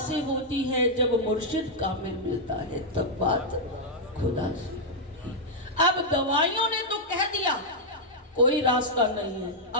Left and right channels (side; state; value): both; normal; correlation -0.04